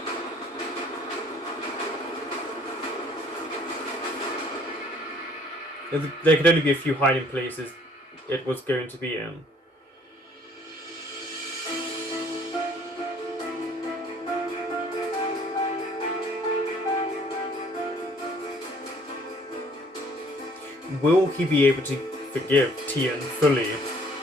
There could only be a few hiding places it was going to be in. Will he be able to forgive Tian fully?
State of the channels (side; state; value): both; normal; correlation 0.58